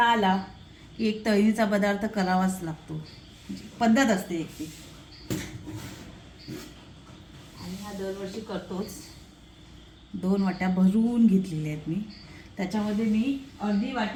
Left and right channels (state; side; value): identical; both; correlation 1.00